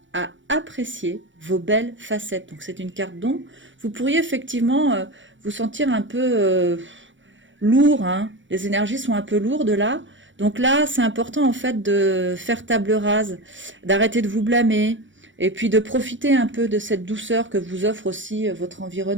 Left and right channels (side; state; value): left; late; 0.55 ms